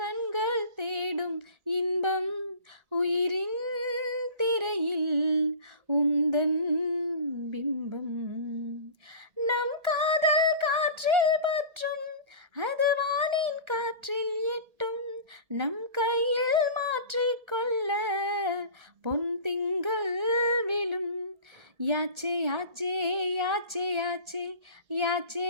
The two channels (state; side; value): late; left; 1.3 ms